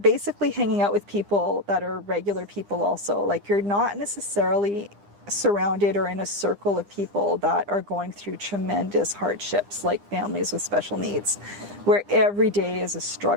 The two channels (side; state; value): left; late; 9.9 ms